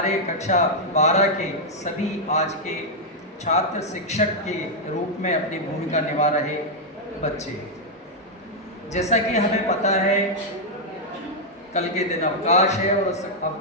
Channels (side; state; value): both; normal; correlation -0.03